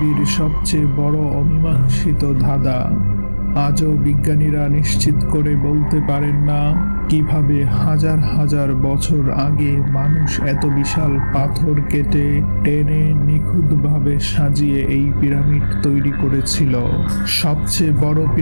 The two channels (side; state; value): both; inverted; correlation -1.00